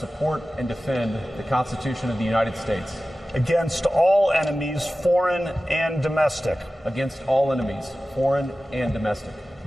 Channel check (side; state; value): both; normal; correlation 0.96